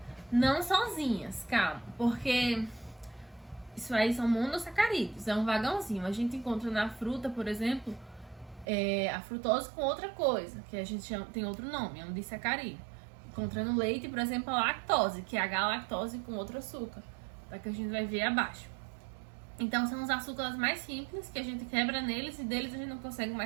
Não sozinhas, calma, porque isso aí são monossacarídeos, é um vagãozinho. A gente encontra na fruta, por exemplo, a frutose com outra coisa, que a gente chama, tem outro nome, é um disacarídeo. Encontra no leite, por exemplo, a lactose, que é a galactose com outro açúcar, tá? Que a gente vai ver abaixo. Então, são os açúcares mais simples que a gente quebra neles e deles a gente não consegue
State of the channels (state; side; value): drops out; left; at 8.7 s